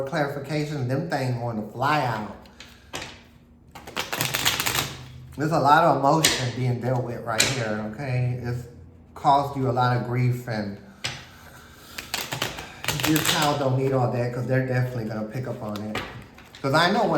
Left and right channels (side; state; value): both; identical; correlation 1.00